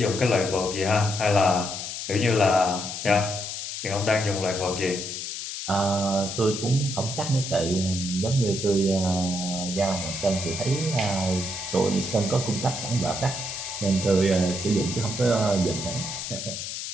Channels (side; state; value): left; noise; hiss, 6 dB below the sound